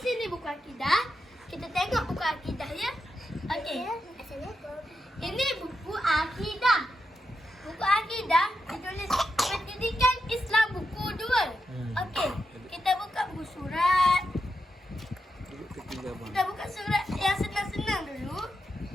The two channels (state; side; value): normal; both; correlation 0.86